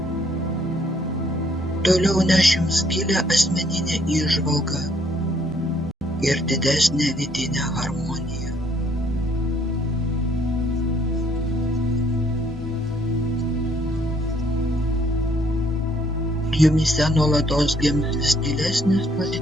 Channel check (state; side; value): normal; both; correlation 0.66